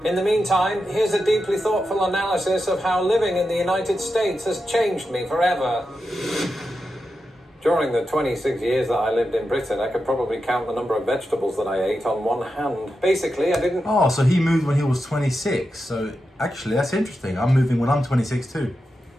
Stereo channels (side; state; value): both; normal; correlation 0.89